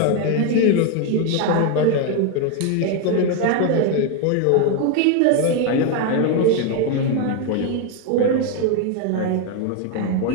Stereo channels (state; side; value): different; both; correlation 0.01